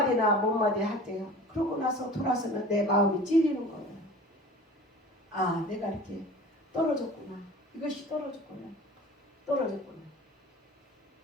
못마디 할 때요. 그러고 나서 돌아서면 내 마음이 찔리는 거예요. 아, 내가 이렇게 떨어졌구나. 이것이 떨어졌구나.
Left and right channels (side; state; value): both; normal; correlation 0.41